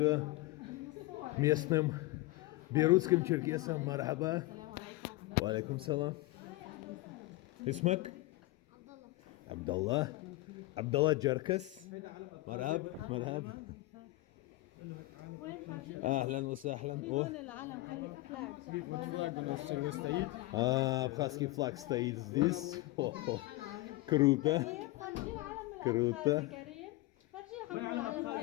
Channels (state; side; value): quieter; right; 19.7 dB